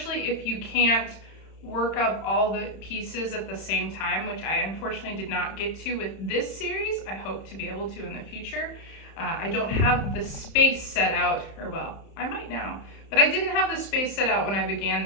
if you can't work up all the pieces at the same time, which I unfortunately did not get to with this series. I hope to be able to in the future. I don't have the space set out, or well, I might now, but I didn't have the space set out when I began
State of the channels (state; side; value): late; right; 31 ms